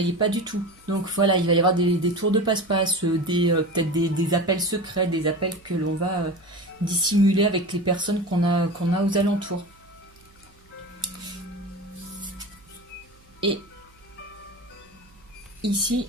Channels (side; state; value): right; noise; hum, 29 dB below the sound